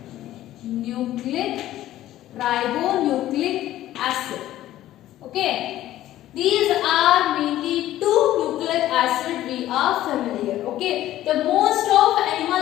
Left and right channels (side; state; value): right; quieter; 13.9 dB